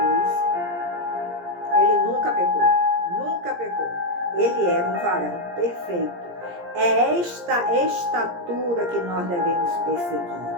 ele nunca pecou. Nunca pecou. Ele era um varão perfeito. É esta estatura que nós devemos perseguir.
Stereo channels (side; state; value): left; late; 17 ms